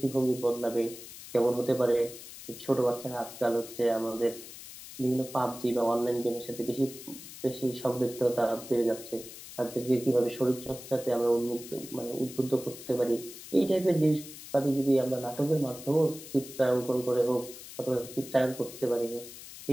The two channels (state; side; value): noise; left; hiss, 14 dB below the sound